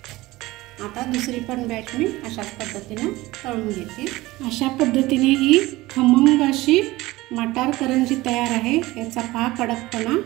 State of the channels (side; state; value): left; quieter; 19.0 dB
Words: आता दुसरी पण बॅच मी अशाच पद्धतीने तळून घेते. अशा पद्धतीने ही खमंग अशी मटार करंजी तयार आहे. याचा पहा कडकपणा,